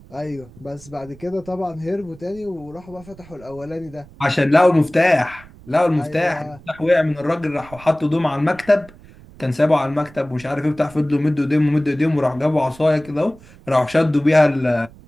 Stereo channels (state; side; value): noise; right; rumble, 22 dB below the sound